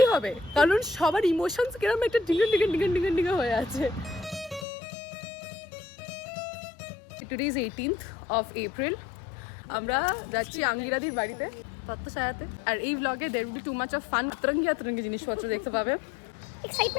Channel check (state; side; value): drops out; right; at 4.7 s